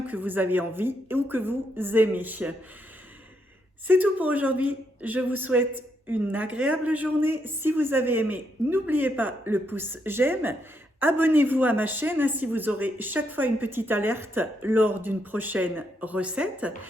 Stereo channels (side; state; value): both; normal; correlation 0.78